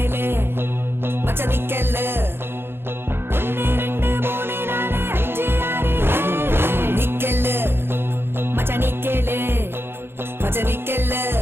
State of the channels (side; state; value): left; late; 0.11 ms